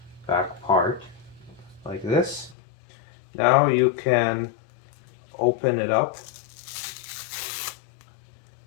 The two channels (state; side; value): drops out; right; at 2.6 s